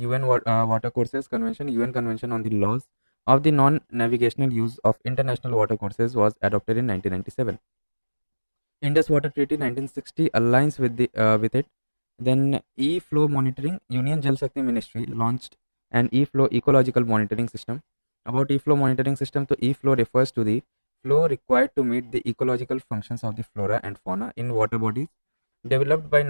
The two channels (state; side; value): inverted; both; correlation -1.00